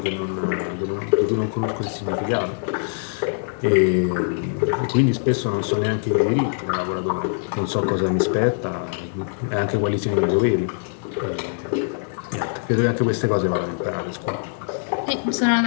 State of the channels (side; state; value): right; silent; digital silence